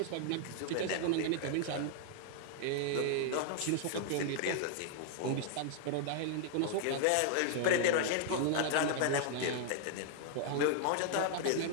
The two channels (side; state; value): both; different; correlation 0.00